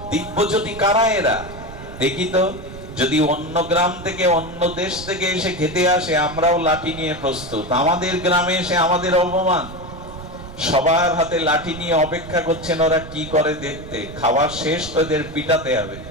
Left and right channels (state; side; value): noise; right; rumble, 13 dB below the sound